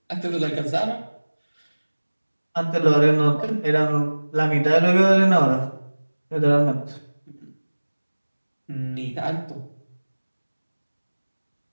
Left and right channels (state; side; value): inverted; both; correlation -1.00